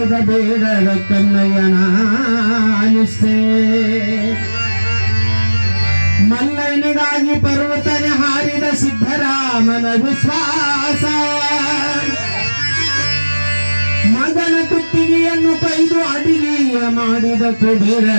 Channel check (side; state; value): both; inverted; correlation -1.00